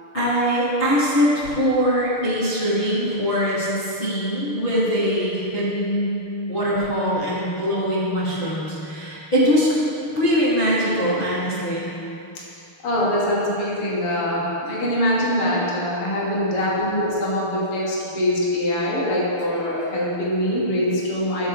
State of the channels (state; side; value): late; right; 6.6 ms